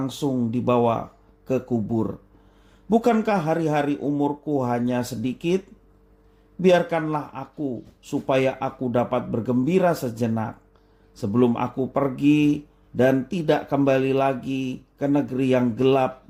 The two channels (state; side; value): identical; both; correlation 1.00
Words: dibawa ke kubur. Bukankah hari-hari umurku hanya sedikit? Biarkanlah aku, supaya aku dapat bergembira sejenak sebelum aku pergi dan tidak kembali lagi ke negeri yang gelap